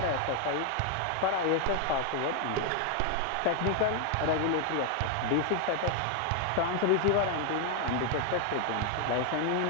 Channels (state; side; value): different; both; correlation 0.00